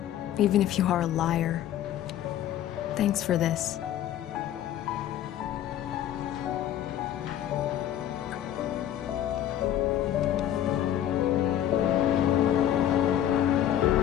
even if you are a liar. Thanks for this.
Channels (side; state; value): right; quieter; 11.4 dB